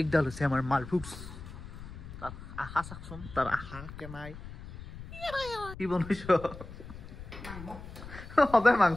আছে আমাৰ মালফুক্স তাৰ আশা সাকছন তাৰ আশা কেনাই কি বনাইছো সদায়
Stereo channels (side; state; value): left; noise; rumble, 13 dB below the sound